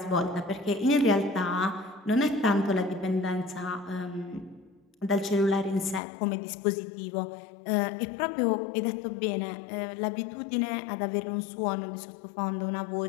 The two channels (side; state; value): right; drops out; at 6.0 s